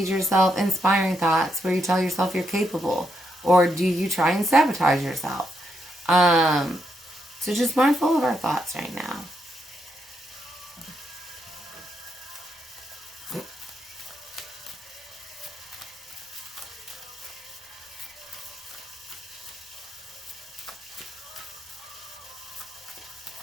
yourself inspiring thoughts where you tell yourself you're capable? Or do you try and sabotage yourself? So just mindful of our thoughts right now.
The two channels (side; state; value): both; normal; correlation 0.80